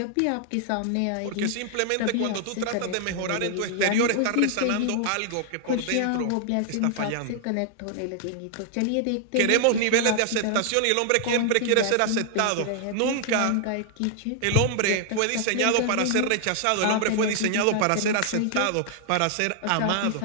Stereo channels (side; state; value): both; different; correlation 0.00